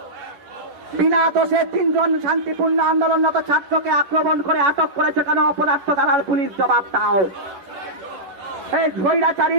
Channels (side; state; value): left; late; 10 ms